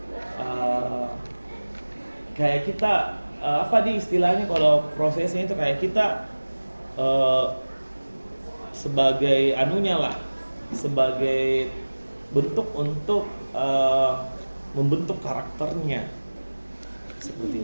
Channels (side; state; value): both; inverted; correlation -1.00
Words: kayak kita istilahnya kalau prosesnya itu kayak kita sebagai sebagai bentuk untuk membentuk karakternya